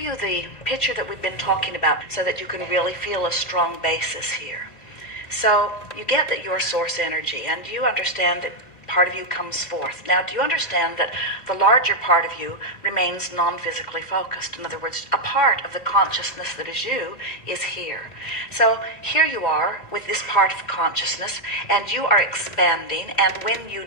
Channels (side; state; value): right; late; 1.9 ms